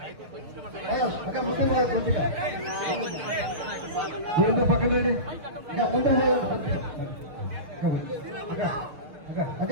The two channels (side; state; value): left; late; 6.5 ms